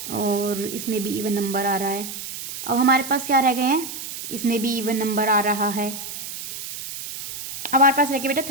और इसमें भी इवन नंबर आ रहा है। अब हमारे पास क्या रह गए हैं, इसमें भी इवन नंबर आ रहा है। अब हमारे पास रह गया बेटा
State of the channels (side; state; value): right; noise; hiss, 9 dB below the sound